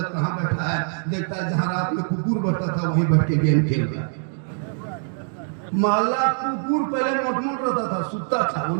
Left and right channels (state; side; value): silent; left; 63 dB below the other